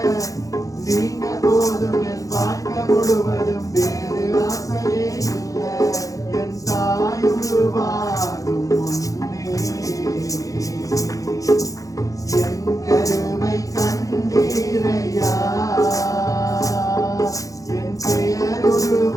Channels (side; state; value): right; late; 0.17 ms